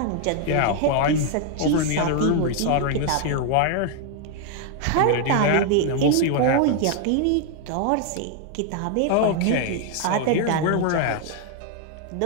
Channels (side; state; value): both; different; correlation 0.00